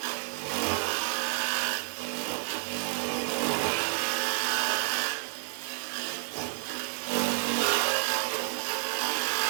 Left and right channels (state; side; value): silent; left; digital silence